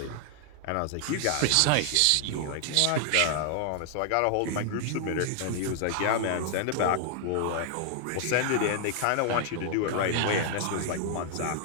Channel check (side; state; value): both; different; correlation 0.00